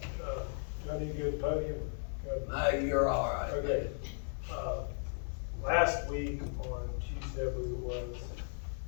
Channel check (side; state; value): right; silent; 54 dB below the other